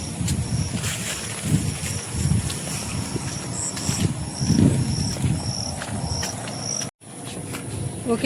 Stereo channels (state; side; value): identical; both; correlation 1.00